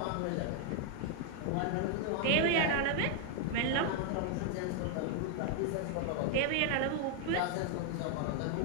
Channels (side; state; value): both; different; correlation 0.00